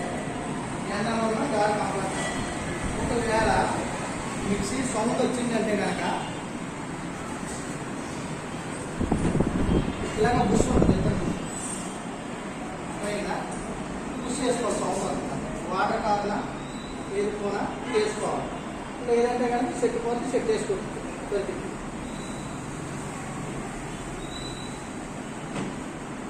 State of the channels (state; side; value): identical; both; correlation 1.00